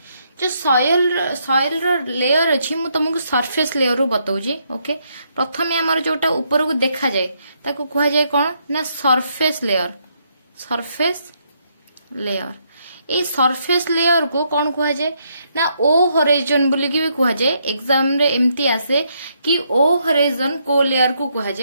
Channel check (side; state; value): both; inverted; correlation -0.75